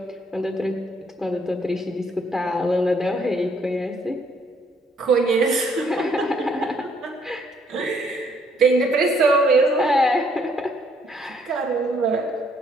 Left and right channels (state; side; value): normal; both; correlation 0.67